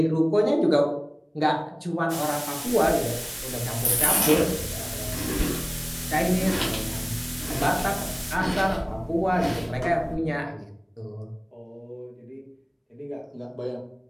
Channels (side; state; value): both; identical; correlation 1.00